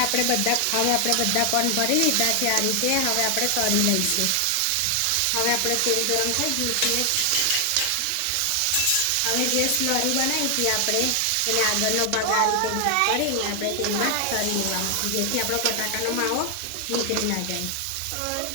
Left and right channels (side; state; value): both; different; correlation 0.00